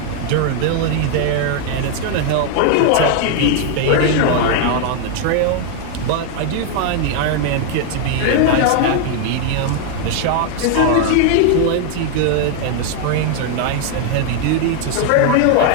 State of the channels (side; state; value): both; different; correlation 0.00